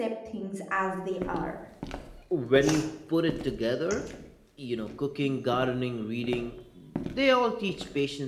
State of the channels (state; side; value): identical; both; correlation 1.00